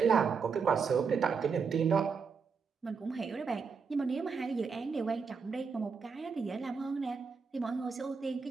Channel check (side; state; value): left; quieter; 5.5 dB